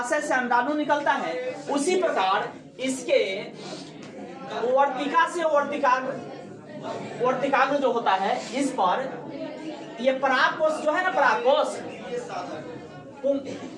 से अंडाणु निकलता है। उसी प्रकार इसके वर्तिका से वर्तिकाग्र जो होता है, इस पर ये परागकोश जो है ना, परागकोश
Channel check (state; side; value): identical; both; correlation 1.00